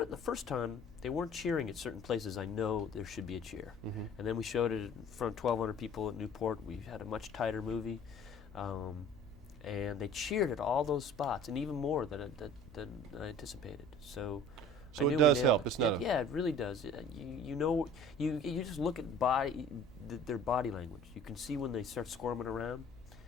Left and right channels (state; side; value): noise; left; hum, 22 dB below the sound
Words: the first time, they weren't cheering at certain places I know there should be a cheer. And then we showed it in front of 1,200 people at Newport. We had a much tighter movie. And they cheered at all those spots, and even more than I anticipated. So I knew it does help. It's not. Yeah, it really does. You know, you just look at their body language. You can see when they start squirming around